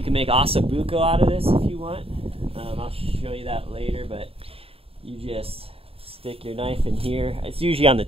can make ossobuco out of this if you want. I'll show you that later, but you just stick your knife in here. It's usually on the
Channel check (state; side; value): late; left; 0.28 ms